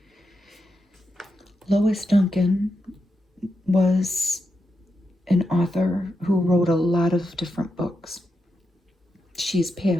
Lois Duncan was an author who wrote a lot of different books. She's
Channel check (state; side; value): normal; both; correlation 0.86